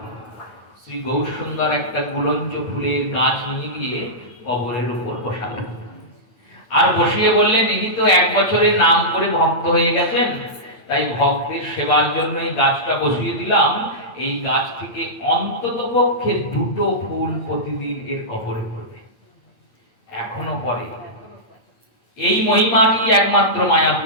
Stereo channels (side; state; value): right; late; 8.9 ms